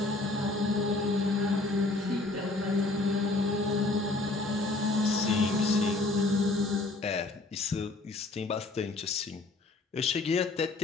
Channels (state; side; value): quieter; right; 3.2 dB